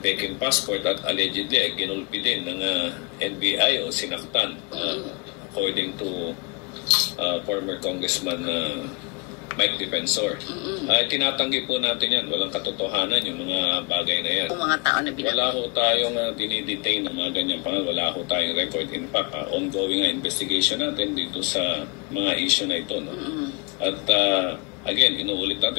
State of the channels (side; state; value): right; quieter; 32.1 dB